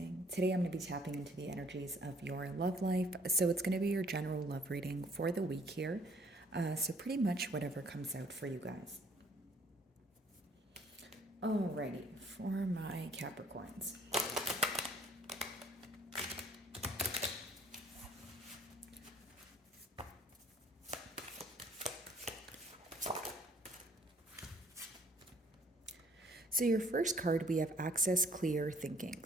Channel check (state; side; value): normal; both; correlation 0.60